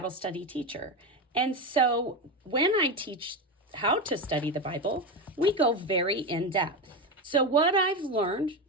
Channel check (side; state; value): both; normal; correlation 0.16